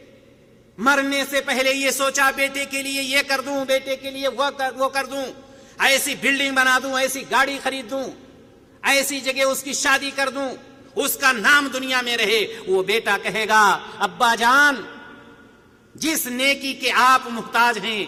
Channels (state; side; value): identical; both; correlation 1.00